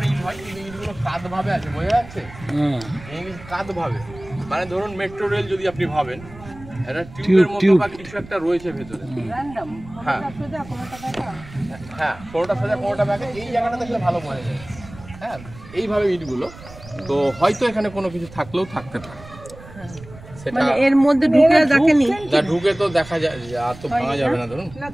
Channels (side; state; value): right; noise; rumble, 18 dB below the sound